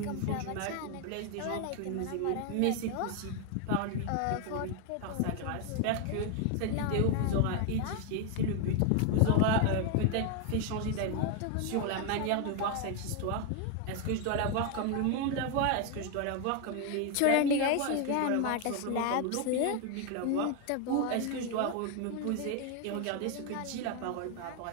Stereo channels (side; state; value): both; different; correlation 0.01